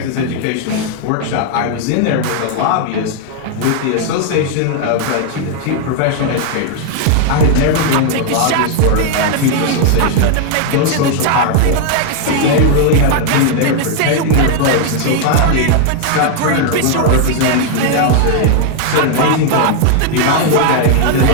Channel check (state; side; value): different; both; correlation 0.00